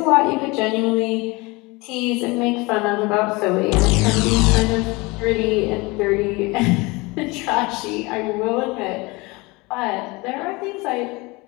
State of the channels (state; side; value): quieter; right; 24.7 dB